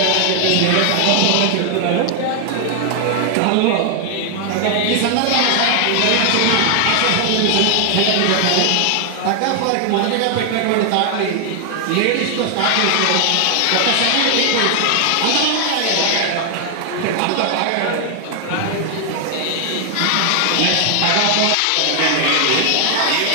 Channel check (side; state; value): both; different; correlation 0.00